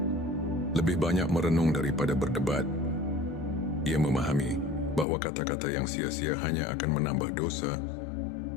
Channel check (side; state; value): right; drops out; at 5.1 s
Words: lebih banyak merenung daripada berdebat. Ia memahami bahwa kata-kata yang sia-sia hanya akan menambah dosa.